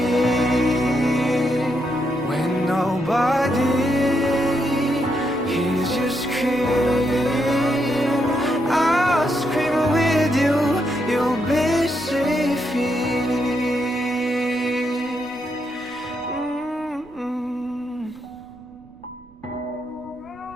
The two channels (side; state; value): right; noise; rumble, 26 dB below the sound